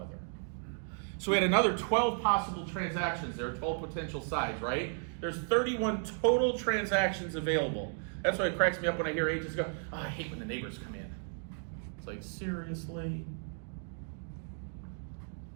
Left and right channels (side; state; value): left; silent; 55 dB below the other